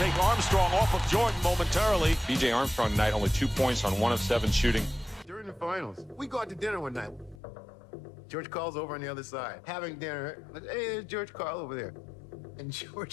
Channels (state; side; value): drops out; right; at 7.4 s